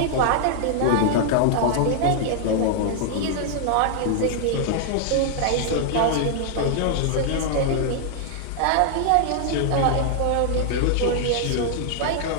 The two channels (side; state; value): both; different; correlation 0.00